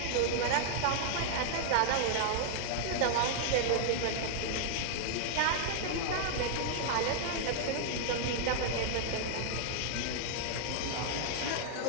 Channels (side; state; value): both; different; correlation -0.01